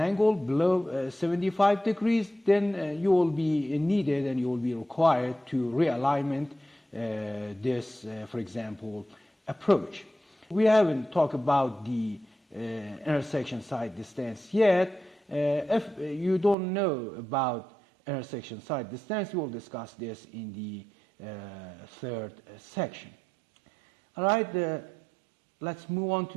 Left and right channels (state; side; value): drops out; left; at 16.6 s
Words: below 75 degrees, then you will be needed and you will be required to realignment this, for example, approach. We haven't talked about the intersection side distance yet. If you don't know about intersection side distance, we will discuss this in the third section. All right, let's move on